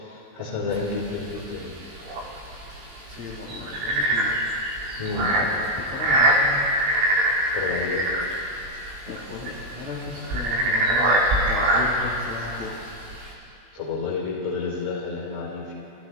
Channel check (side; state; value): left; late; 20 ms